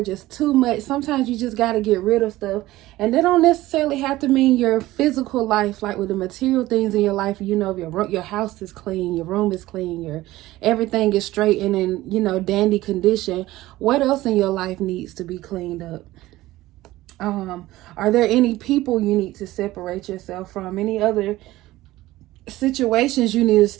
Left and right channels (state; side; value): quieter; left; 17.0 dB